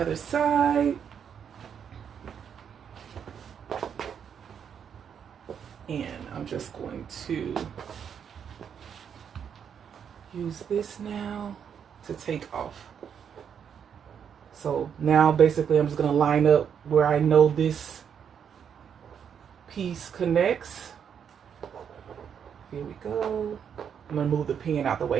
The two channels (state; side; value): quieter; left; 7.8 dB